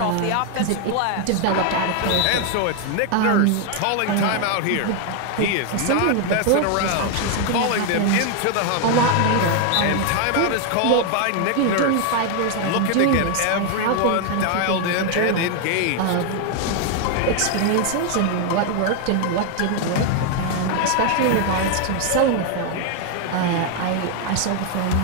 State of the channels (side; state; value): both; different; correlation 0.00